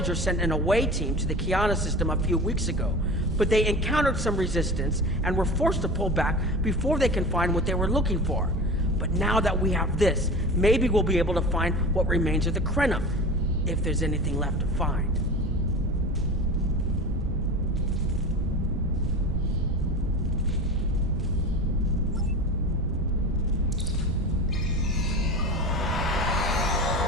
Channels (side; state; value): right; noise; rumble, 6 dB below the sound